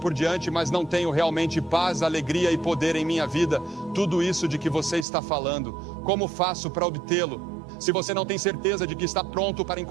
diante, mas não tenho realmente paz, alegria e poder em minha vida. Tudo isso de que você está falando, como faço para obtê-lo? Se você não tem certeza de que está pronto para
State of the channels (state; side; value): drops out; left; at 5.1 s